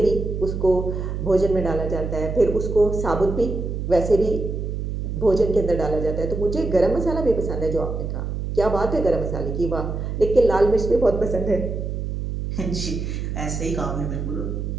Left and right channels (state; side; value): noise; right; hum, 4 dB below the sound